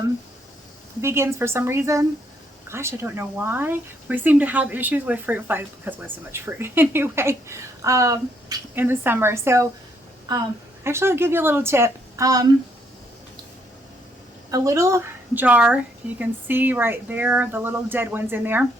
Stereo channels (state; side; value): normal; both; correlation 0.71